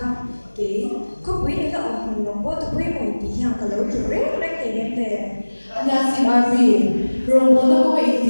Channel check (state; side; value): inverted; both; correlation -1.00